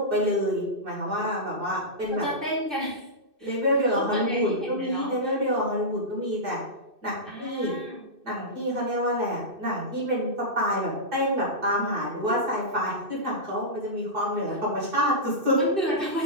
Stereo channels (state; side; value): late; left; 2.6 ms